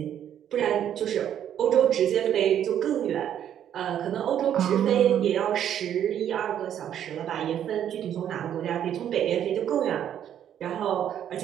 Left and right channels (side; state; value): left; quieter; 10.0 dB